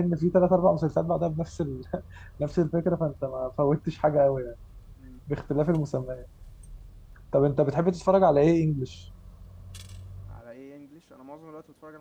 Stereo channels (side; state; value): both; identical; correlation 1.00